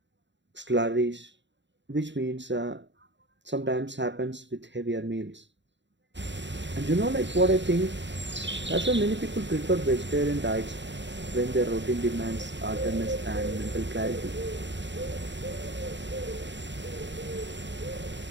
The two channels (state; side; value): late; left; 0.53 ms